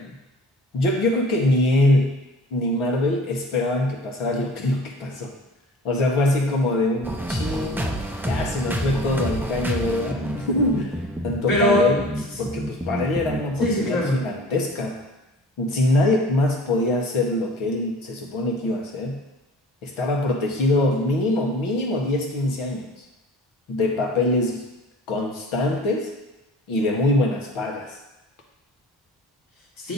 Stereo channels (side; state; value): both; normal; correlation 0.44